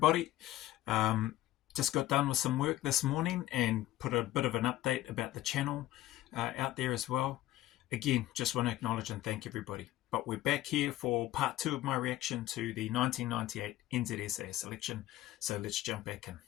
Just got done with some work this morning and put a bit of an update about the channel out there as well. Again, just want to acknowledge and thank everybody. But we're back here for part 2 of my reaction to the 1998 NZSAS election. So let's jump back in.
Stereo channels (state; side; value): quieter; right; 15.2 dB